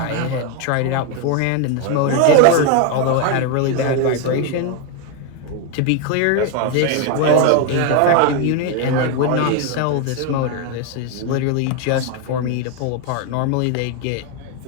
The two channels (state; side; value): different; both; correlation 0.01